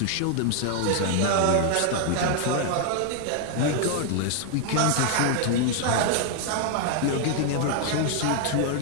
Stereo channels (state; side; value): different; both; correlation 0.00